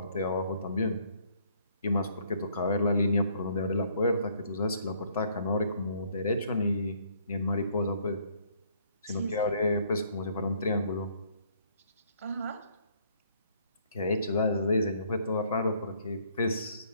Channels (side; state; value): both; inverted; correlation -0.64